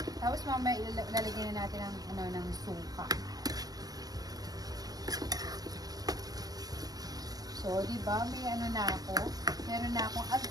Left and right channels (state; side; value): late; left; 0.18 ms